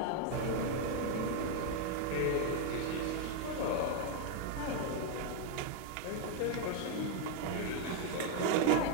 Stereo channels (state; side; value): different; both; correlation 0.00